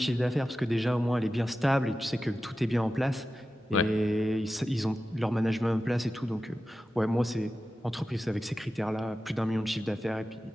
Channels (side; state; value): both; normal; correlation 0.93